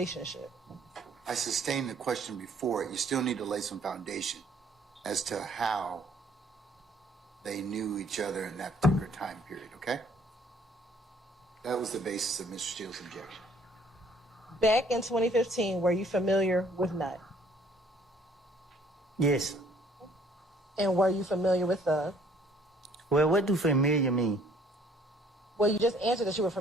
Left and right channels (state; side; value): normal; both; correlation 0.60